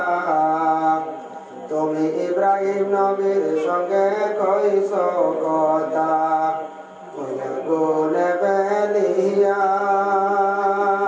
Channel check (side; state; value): both; identical; correlation 1.00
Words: তুমি ইব্রাহিম নবীর সঙ্গে কইছো কথা, ওই আগুনে ফেলিয়া